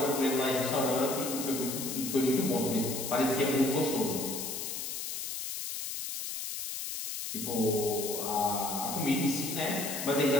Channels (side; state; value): left; noise; hiss, 5 dB below the sound